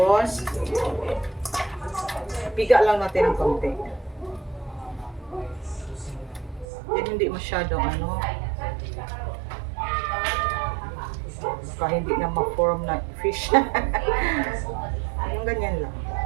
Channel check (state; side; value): drops out; left; at 6.7 s